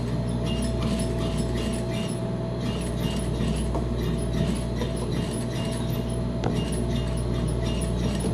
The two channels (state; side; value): identical; both; correlation 1.00